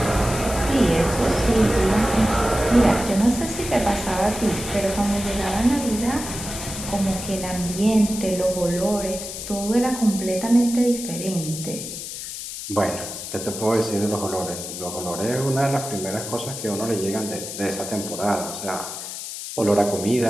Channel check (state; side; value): noise; left; hiss, 8 dB below the sound